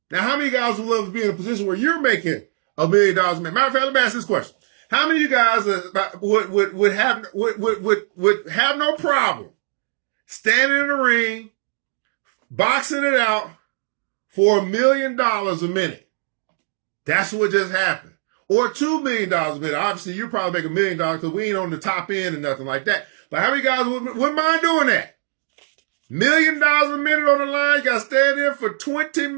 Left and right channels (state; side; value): silent; left; digital silence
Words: Now, how many guys would love to be in a position where you're making $1 million a minute? Matter of fact, let me ask this question. How many of you guys would have no problem standing in the ring, boxing it out for $1 million a minute? That's what just happened. Or $2 million a minute. Obviously, you probably make $1 million because we ain't on the top end and nothing like that. But how many guys wouldn't mind doing that? $1 million a minute on the line. You got to stand in for 20